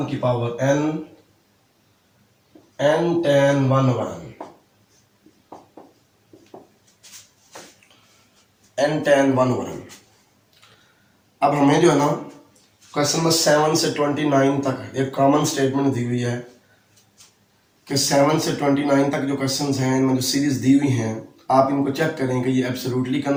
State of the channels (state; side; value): identical; both; correlation 1.00